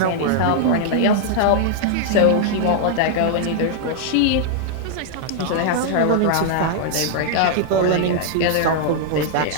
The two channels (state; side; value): different; both; correlation -0.01